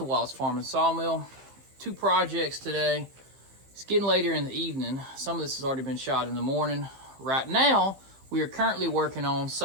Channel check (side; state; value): left; late; 15 ms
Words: Wallace Farm and Sawmill. Two projects today. It's getting later in the evening. Some of this has already been shot in the morning. Right now, we are currently working on